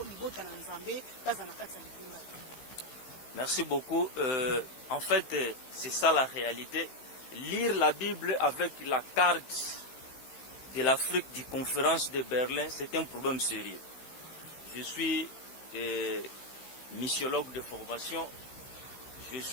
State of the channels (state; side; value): late; right; 15 ms